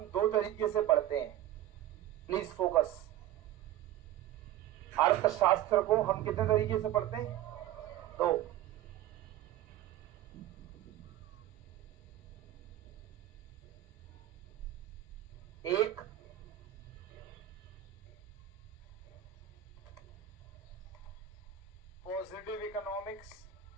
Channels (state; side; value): quieter; left; 12.6 dB